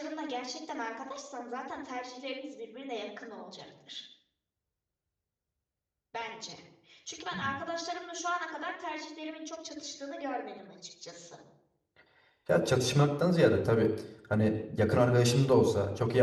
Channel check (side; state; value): both; identical; correlation 1.00